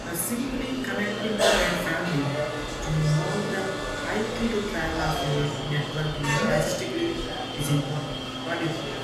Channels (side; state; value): both; identical; correlation 1.00